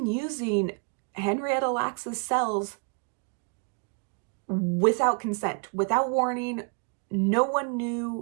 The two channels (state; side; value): quieter; left; 37.7 dB